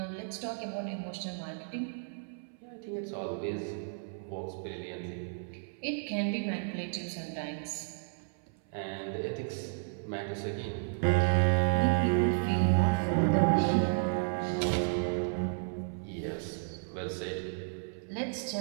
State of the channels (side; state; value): left; silent; 56 dB below the other